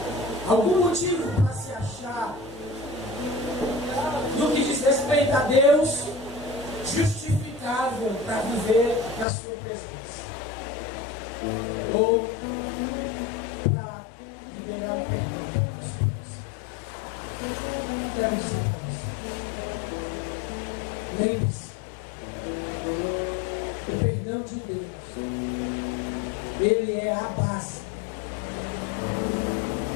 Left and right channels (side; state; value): right; drops out; at 9.2 s